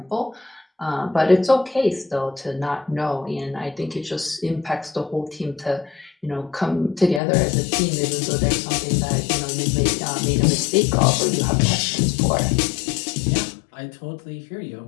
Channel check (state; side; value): drops out; right; at 7.2 s